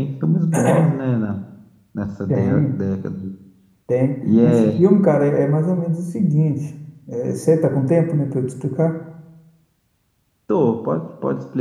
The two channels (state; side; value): identical; both; correlation 1.00